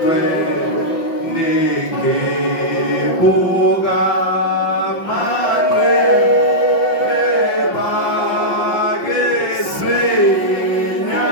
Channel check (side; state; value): right; late; 5.8 ms